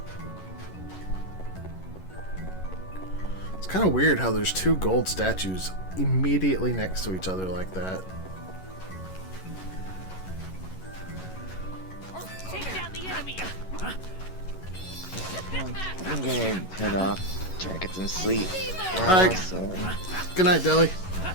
It's kind of weird how there's two gold statues immediately next to each other like that. Take down the enemy. I'm gonna head off, try to get some sleep. Alright. So, Good night, Deli.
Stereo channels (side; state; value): right; late; 11 ms